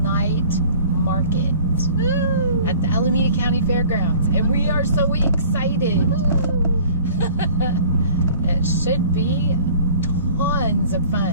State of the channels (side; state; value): both; inverted; correlation -0.49